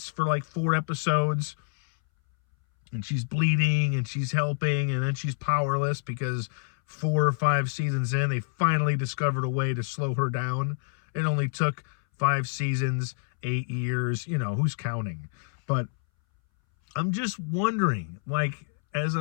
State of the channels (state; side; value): silent; right; 60 dB below the other